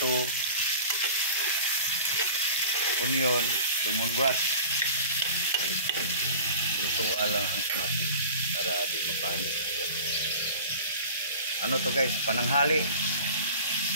onion, lemongrass. Lutuan lang ang kamatis para di mapanis. Ano to guys? Pananghali.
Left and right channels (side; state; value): both; inverted; correlation -0.40